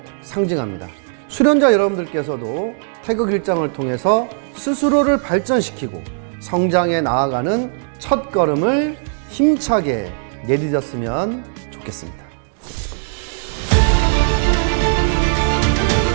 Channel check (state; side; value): silent; left; digital silence